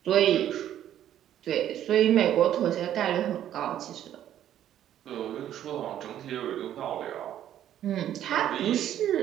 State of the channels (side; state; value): left; quieter; 11.2 dB